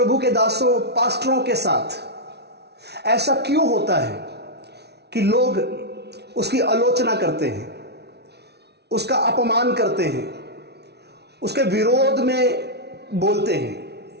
के दासों पास्टरों के साथ ऐसा क्यों होता है कि लोग उसकी आलोचना करते हैं, उसका अपमान करते हैं, उसके विरोध में बोलते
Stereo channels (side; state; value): left; late; 0.49 ms